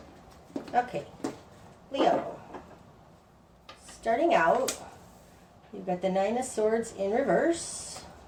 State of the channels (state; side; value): identical; both; correlation 1.00